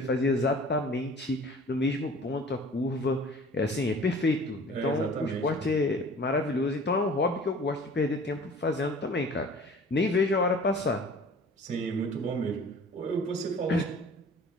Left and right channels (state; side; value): normal; both; correlation 0.46